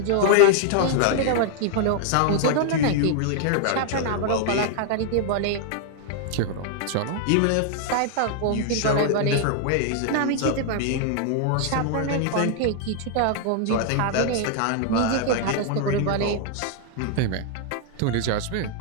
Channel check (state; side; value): different; both; correlation 0.00